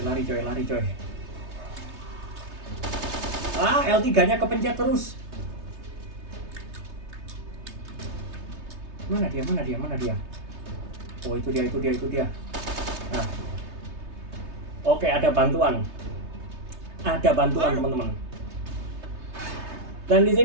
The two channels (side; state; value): left; late; 3.3 ms